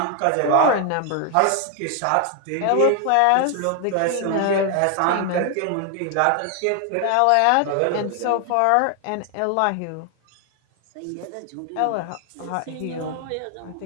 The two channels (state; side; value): different; both; correlation 0.00